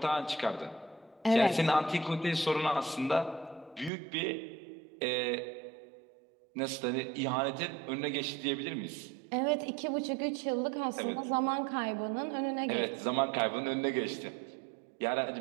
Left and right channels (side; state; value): left; drops out; at 3.9 s